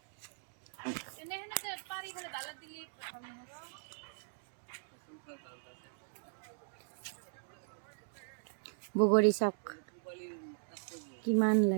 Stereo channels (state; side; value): silent; left; digital silence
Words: বগৰী চাওক কিমান